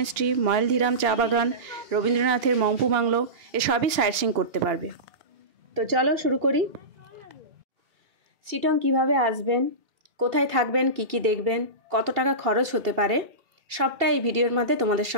ময়েলধিরাম চা বাগান, রবীন্দ্রনাথের মংপু বাংলো, এসবই সাইট সিইং করতে পারবে। তো চলো শুরু করি। শিটং কিভাবে আসবেন, কোথায় থাকবেন, কি কি দেখবেন, কত টাকা খরচ হতে পারে, সবটা এই ভিডিওর মধ্যে তোমাদের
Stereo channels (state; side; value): late; left; 2.8 ms